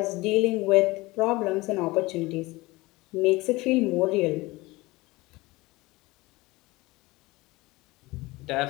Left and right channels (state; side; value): quieter; right; 21.3 dB